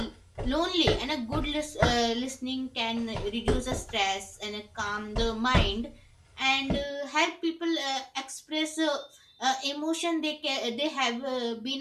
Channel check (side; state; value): both; identical; correlation 1.00